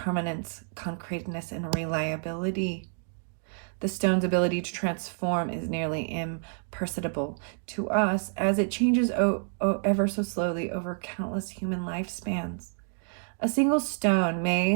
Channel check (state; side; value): silent; left; 55 dB below the other